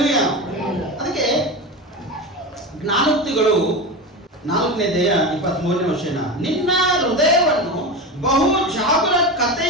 ಅದಕ್ಕೆ ಜ್ಞಾನೋಕ್ತಿಗಳು 4ನೇ ಅಧ್ಯಾಯ 23ನೇ ವಚನ, ನಿನ್ನ ಹೃದಯವನ್ನು ಬಹು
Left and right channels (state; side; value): normal; both; correlation 0.22